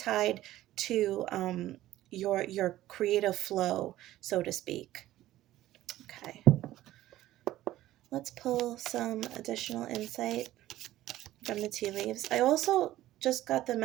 to your creative flow, so to speak. Okay. Let's pull some additional insight from the tea leaves. I also just got the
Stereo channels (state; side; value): quieter; left; 14.7 dB